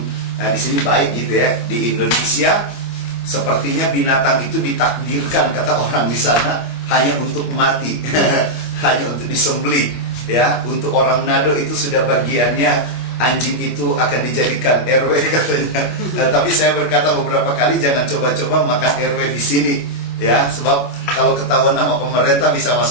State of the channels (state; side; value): late; right; 25 ms